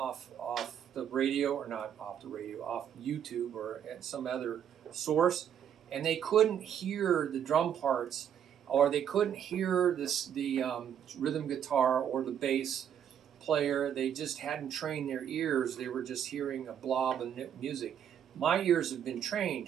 the radio, or not off the radio, off YouTube or at some other source, and they couldn't hear the drum parts, or they couldn't hear the rhythm guitar or the bass player. They just hadn't trained their ears. They were just hearing a blob of music. My ears have been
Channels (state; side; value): quieter; left; 9.0 dB